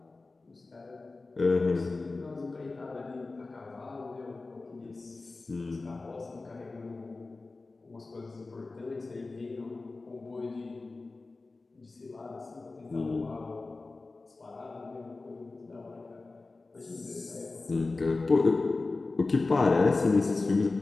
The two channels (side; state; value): right; quieter; 3.5 dB